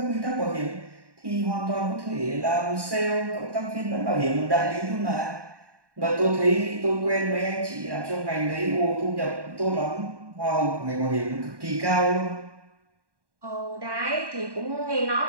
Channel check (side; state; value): left; late; 1.1 ms